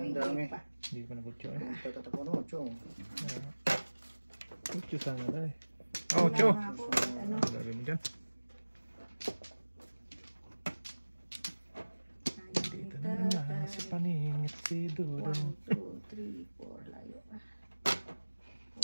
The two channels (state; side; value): inverted; both; correlation -1.00